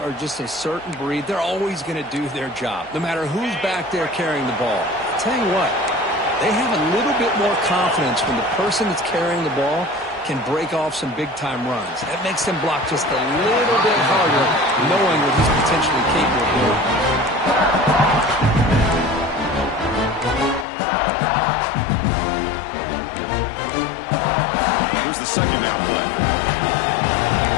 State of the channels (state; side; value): drops out; right; at 20.7 s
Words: just a certain breed. They're always going to do their job, no matter who's back there carrying the ball. I'll tell you what, they have a little bit more confidence when the person that's carrying the ball can break off some big-time runs. That makes them block just a little bit harder, knowing what he's potentially capable of doing. Here's the second down play.